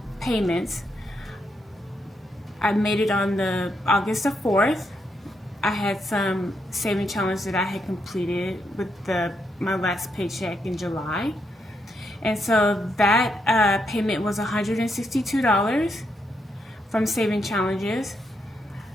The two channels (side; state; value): both; normal; correlation 0.79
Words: payments, I made it on the August the 4th. I had some saving challenge that I had completed with my last paycheck in July. And so that payment was $162 from saving challenges.